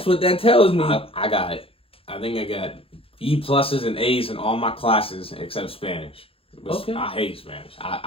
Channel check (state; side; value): late; right; 0.27 ms